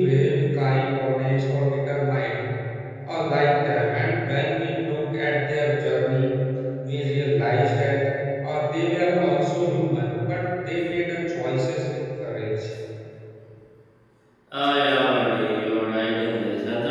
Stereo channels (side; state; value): both; identical; correlation 1.00